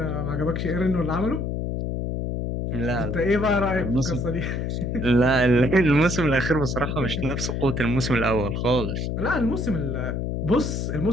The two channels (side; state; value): left; noise; hum, 2 dB below the sound